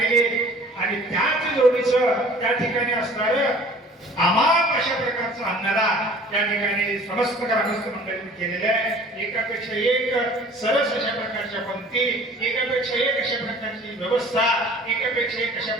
आणि त्याच जोडीचं त्या ठिकाणी असणारं अमाप अशा प्रकारचं अन्नदान त्या ठिकाणी समस्त ग्रामस्थ मंडळींनी केलेलं आहे एकापेक्षा एक सरस अशा प्रकारच्या पंक्ती एकापेक्षा एक अशा प्रकारची व्यवस्था एकापेक्षा एक अशा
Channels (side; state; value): both; normal; correlation 0.49